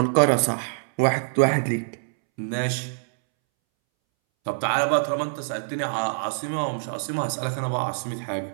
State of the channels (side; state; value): left; silent; 62 dB below the other